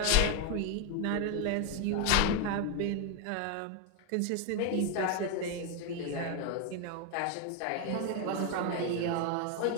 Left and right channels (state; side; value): different; both; correlation 0.01